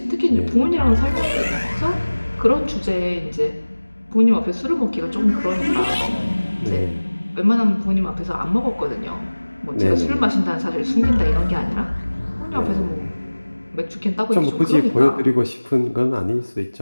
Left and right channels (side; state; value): both; inverted; correlation -1.00